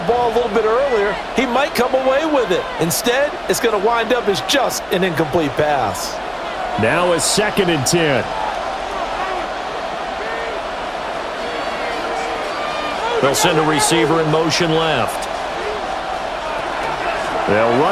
ball a little bit earlier, he might come away with it. Instead, it's going to wind up as just an incomplete pass. Now a 2nd and 10. They'll send a receiver in motion left. They'll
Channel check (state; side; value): identical; both; correlation 1.00